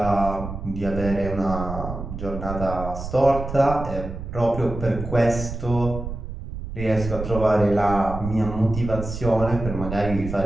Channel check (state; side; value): noise; right; rumble, 8 dB below the sound